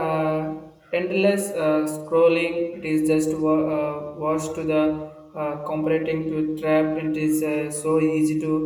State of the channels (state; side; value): identical; both; correlation 1.00